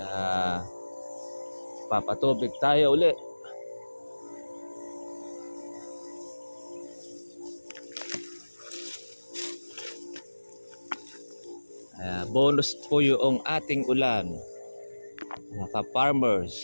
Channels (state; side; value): inverted; both; correlation -1.00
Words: papatubig tayo uli. Bonus po yung ating ulan, mga